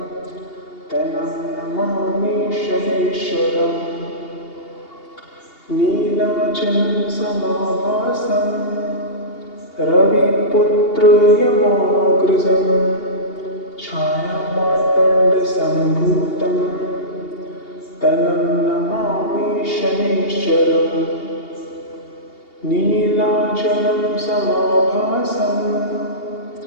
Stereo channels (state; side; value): late; right; 2.8 ms